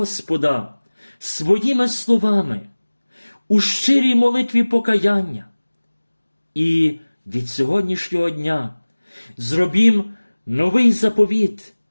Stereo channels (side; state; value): both; inverted; correlation -1.00